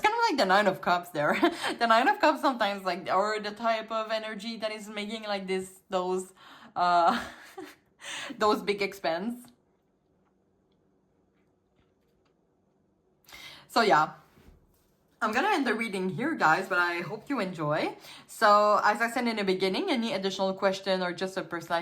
of like the Nine of Cups there. The Nine of Cups sometimes like, or the type of energy that is making like those big expense. So yeah, I'm gonna end the reading here, guys, but I hope you enjoy. So as I said in the beginning, any additional question or just a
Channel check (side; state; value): both; identical; correlation 1.00